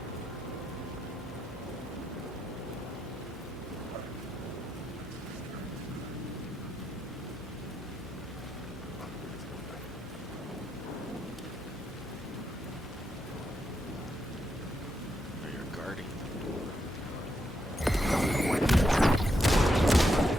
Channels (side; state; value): both; normal; correlation 0.82